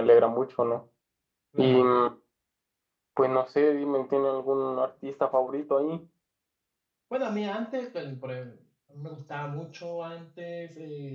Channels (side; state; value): both; identical; correlation 1.00